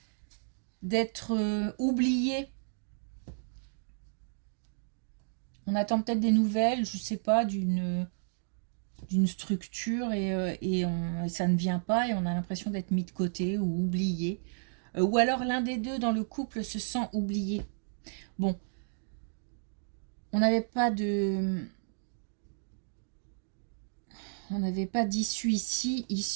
oublié. On attend peut-être des nouvelles, je ne sais pas, d'une structure et ça ne vient pas et on a l'impression d'être mis de côté ou oublié. Ou alors l'un des deux dans le couple se sent oublié. Bon, on n'avait pas d'issue ici,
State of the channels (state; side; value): silent; left; digital silence